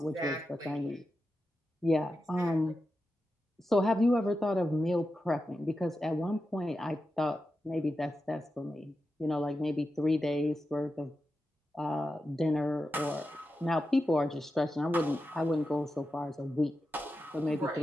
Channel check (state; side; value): normal; both; correlation 0.90